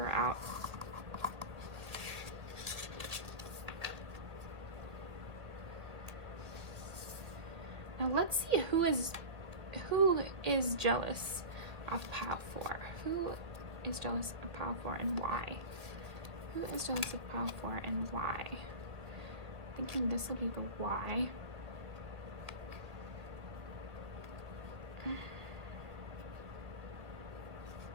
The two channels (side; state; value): left; late; 1.9 ms